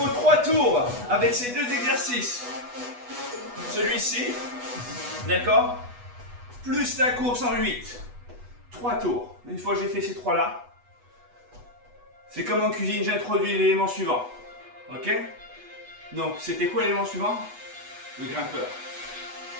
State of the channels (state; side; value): late; left; 8.2 ms